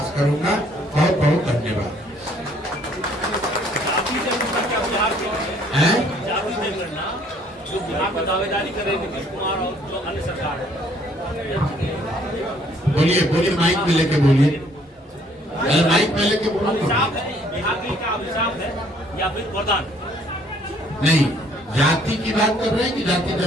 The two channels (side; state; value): both; normal; correlation 0.62